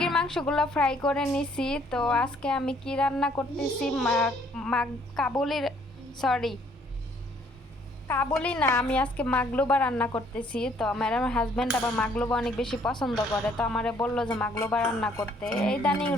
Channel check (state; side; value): normal; both; correlation 0.63